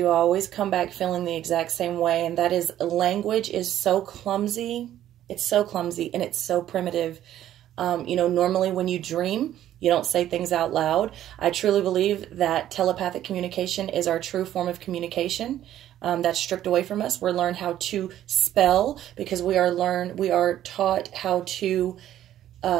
I always come back feeling the exact same way. And that is, language is so clumsy. It's so clumsy and it's so primitive. Normally when you dream, you don't say things out loud. I truly believe that telepathic communication is our true form of communication. That's stripped away from us. We're learned how to spell because we are taught how to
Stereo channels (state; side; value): quieter; left; 12.1 dB